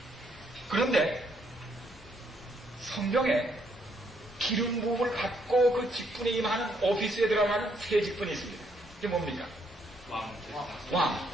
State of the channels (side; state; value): both; normal; correlation 0.72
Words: 그런데 성경에 기름 부음을 받고 그 직분에 임하는 오피스에 들어가는 세 직분이 있습니다. 이게 뭡니까? 왕.